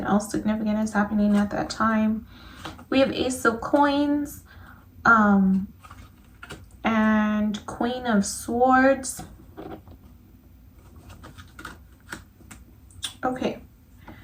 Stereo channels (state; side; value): identical; both; correlation 1.00